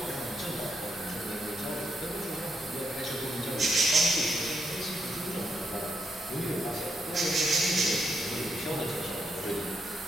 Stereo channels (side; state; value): both; normal; correlation 0.79